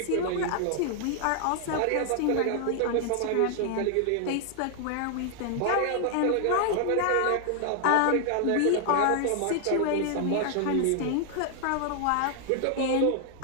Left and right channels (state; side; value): different; both; correlation 0.00